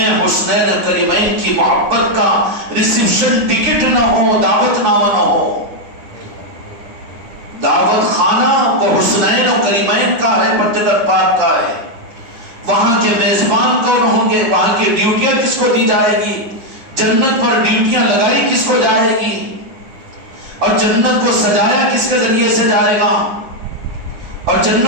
حسنین کریمین کی محبت کا ریسیپشن ٹکٹ نہ ہو، دعوت نامہ نہ ہو۔ دعوت خانہ وہ حسنین و کریمین کا ہے، پنجتن پاک کا ہے۔ وہاں کے میزبان کون ہوں گے، وہاں کی ڈیوٹیاں کس کو دی جائے گی، جنت پر ڈیوٹیاں لگائی کس کو جائے گی، اور جنت کو سجایا کس کے ذریعے سے جائے گا، اور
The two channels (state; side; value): late; left; 9.4 ms